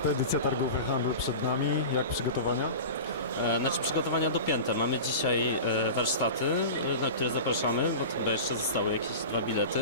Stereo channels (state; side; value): inverted; both; correlation -0.31